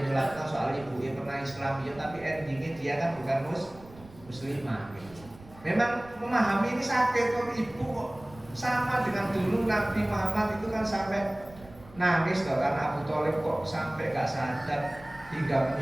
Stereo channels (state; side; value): noise; right; rumble, 21 dB below the sound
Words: nyulatkan soal ibunya pernah Islam ya, tapi endingnya dia kan bukan muslimah gitu. Memang memahami ini sakit kok ibu kok sama dengan dulu Nabi Muhammad itu kan sampai nangis loh karena Abu Thalib kok sampai gak sadar hingga